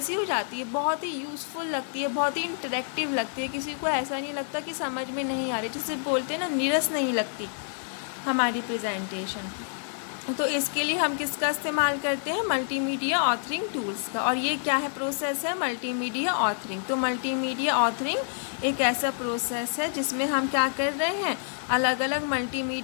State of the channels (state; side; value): silent; right; digital silence